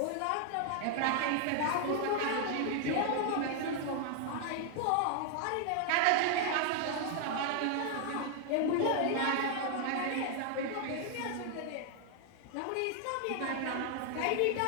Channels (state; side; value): different; both; correlation 0.00